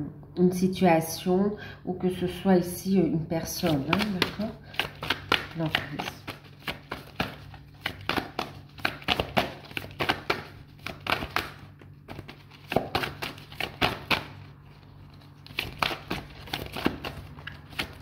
situation ou que ce soit ici une personne, hein, d'accord? L'emprise.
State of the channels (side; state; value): both; identical; correlation 1.00